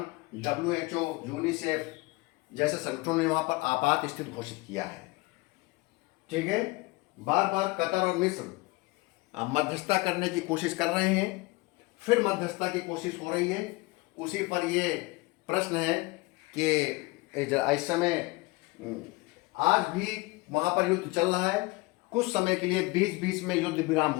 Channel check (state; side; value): quieter; right; 23.3 dB